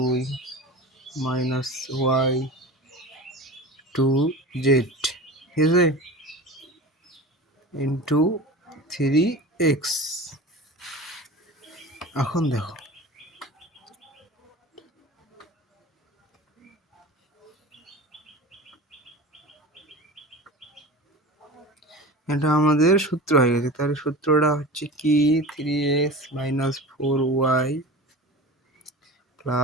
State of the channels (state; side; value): normal; both; correlation 0.34